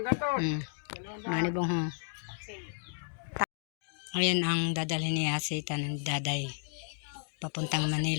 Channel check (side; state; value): right; silent; digital silence